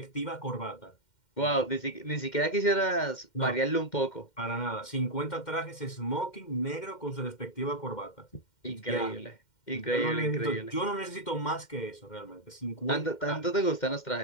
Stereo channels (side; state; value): right; late; 2.1 ms